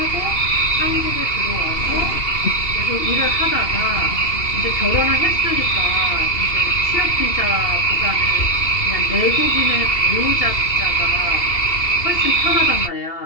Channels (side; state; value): right; late; 2.7 ms